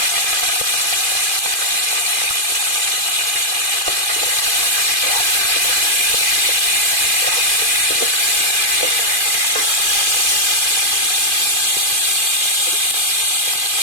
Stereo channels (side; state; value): left; late; 2.5 ms